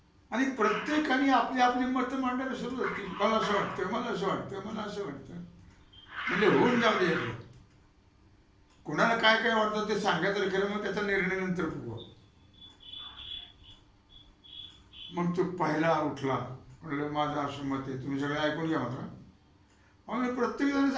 आणि प्रत्येकाने आपली आपली मतं मांडायला सुरुवात केली. मला असं वाटतं, मला असं वाटतं, मला असं वाटतं. म्हणजे होऊन जाऊ दे. कोणाला काय काय वाटतं ते सांगायचं खरं, मग त्याचा निर्णय नंतर बघू. मग तो पहिला उठला, म्हणलं माझं असं मत आहे, तुम्ही सगळं ऐकून घ्या मात्र. आम्ही प्रत्येक जण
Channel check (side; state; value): both; identical; correlation 1.00